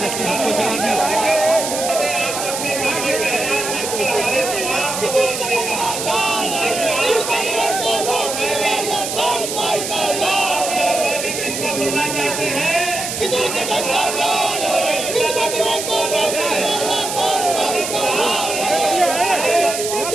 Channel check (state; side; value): noise; right; hiss, 4 dB below the sound